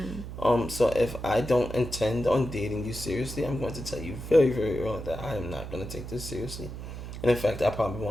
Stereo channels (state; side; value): noise; right; hum, 9 dB below the sound